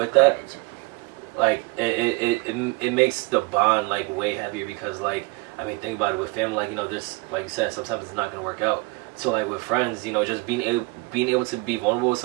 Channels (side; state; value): left; quieter; 25.1 dB